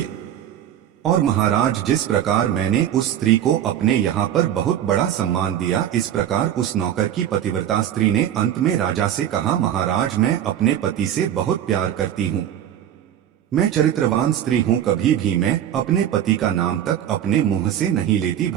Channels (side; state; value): left; quieter; 10.6 dB